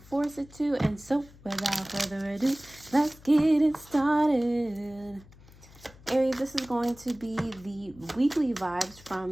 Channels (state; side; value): noise; left; hum, 23 dB below the sound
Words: force it to. And so, without further ado, let's get it started. Aries, this is going to be the weekly vibes from